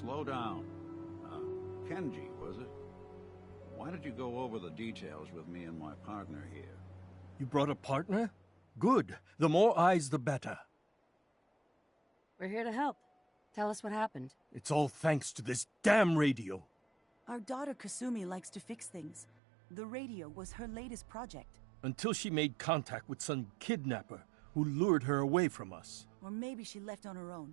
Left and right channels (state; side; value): drops out; left; at 19.2 s